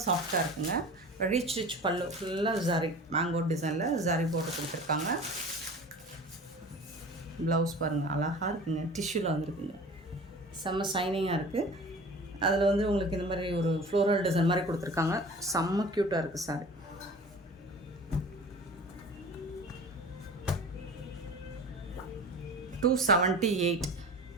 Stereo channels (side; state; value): both; normal; correlation 0.40